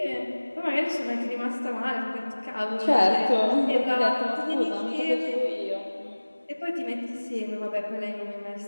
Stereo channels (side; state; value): both; inverted; correlation -1.00